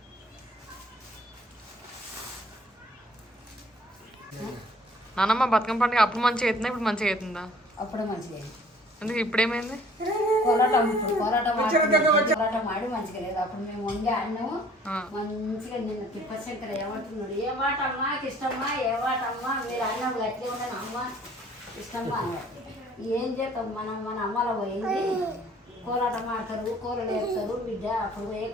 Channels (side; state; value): both; normal; correlation 0.55